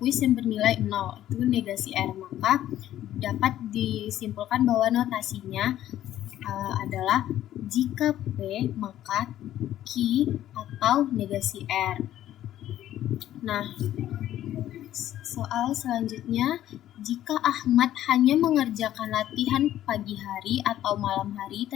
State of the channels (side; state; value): right; quieter; 12.6 dB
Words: yang bernilai 0 itu negasi R. Maka dapat disimpulkan bahwa notasinya adalah jika P maka Q atau negasi R. Nah, soal selanjutnya, jika Ahmad hanya mengerjakan latihan pagi hari atau malam hari